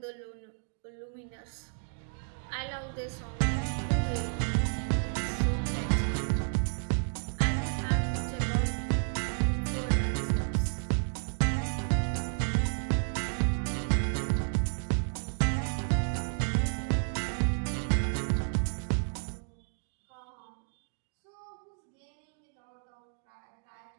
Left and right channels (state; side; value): silent; left; 57 dB below the other